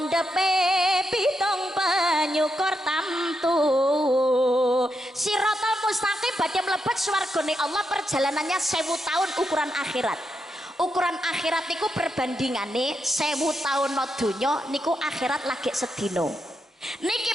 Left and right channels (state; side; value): normal; both; correlation 0.83